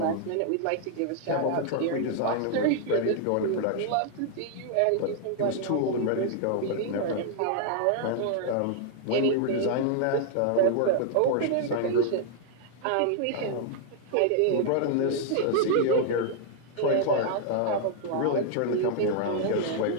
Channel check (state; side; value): different; both; correlation 0.00